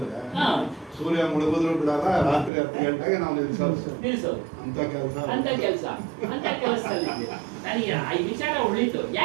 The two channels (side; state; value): left; drops out; at 2.5 s